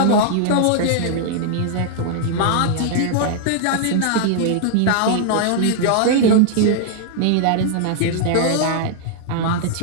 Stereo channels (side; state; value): both; different; correlation -0.01